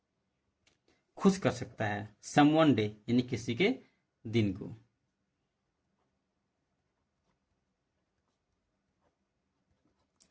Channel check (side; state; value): both; identical; correlation 1.00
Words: खुश कर सकता है, समवन डे यानी किसी के दिन को,